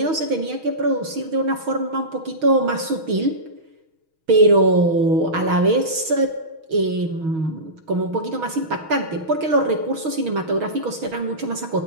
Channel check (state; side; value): late; left; 6.3 ms